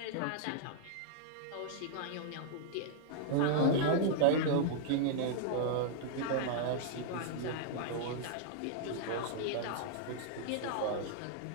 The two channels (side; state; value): both; different; correlation -0.01